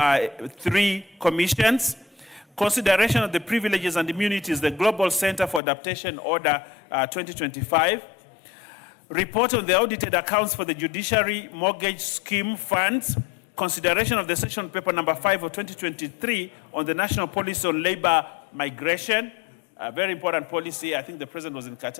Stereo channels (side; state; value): right; drops out; at 5.6 s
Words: 3 commissions. Consideration of the privileges and immunities, the Global Center for Adaptation Order 2025. Report on the audited accounts for the Judiciary Mortgage Scheme Funds. Consideration of the session paper number 5 of 2023 on the National Policy on Labor Migration. A very important policy. I think the president was in